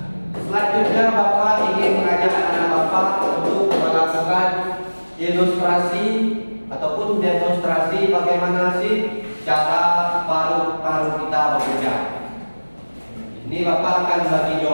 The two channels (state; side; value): inverted; both; correlation -1.00